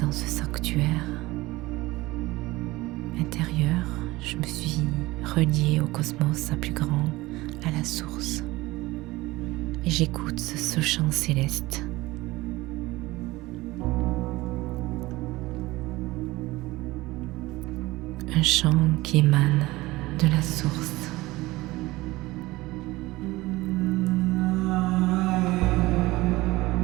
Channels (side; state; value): left; quieter; 19.6 dB